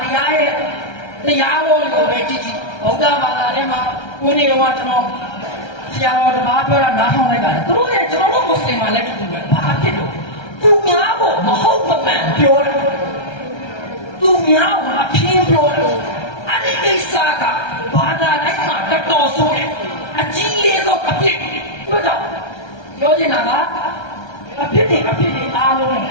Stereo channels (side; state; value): right; late; 1.3 ms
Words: တရားရဲ့တရားတော်ကိုပဲကြည့်ဗုဒ္ဓဘာသာထဲမှာကိုယ်နေတော့ကျွန်တော်ဆရာတော်တပါးပြောတာနားထောင်လိုက်တာသူတို့ရဲ့ကျွန်တော်တို့မွတ်စလင်မှာလည်းတူပဲဘာဖြစ်လို့သူများကိုမဟုတ်မမှန်ပြောတယ်သူများကိုအပြင်းပြောတယ်အဲ့ဒီကိစ္စကဘာသာတိုင်းမှာတော်ဆိုးတယ်အကြီးလေးတော့အပြစ်ပြောကြပြောချင်တာကအပြစ်တွေအားလုံးန